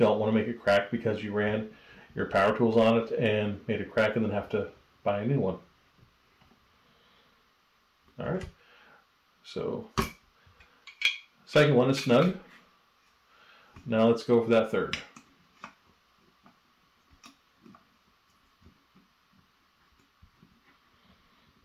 want to make it crack because you ran your power tools on it and made it crack and then have to buy a new one. Alright, so second one is snug. Now let's go for that third.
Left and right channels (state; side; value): identical; both; correlation 1.00